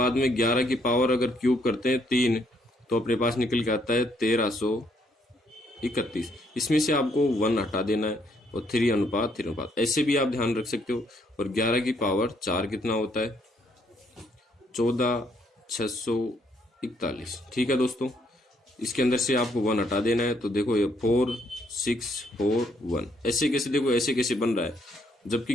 में 11 की पावर अगर क्यूब करते हैं 3 तो अपने पास निकल के आता है 1331। इसमें से आपको 1 हटा देना है और 3:3 ऐसे भी आप ध्यान रख सकते हो। और 11 की पावर 4 कितना होता है, 14,641। ठीक है दोस्तों, इसके अंदर से आपको 1 हटा देना है। तो देखो ये 4641 ऐसे कैसे, देखो ऐसे कैसे बन रहा है,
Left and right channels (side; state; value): both; normal; correlation 0.71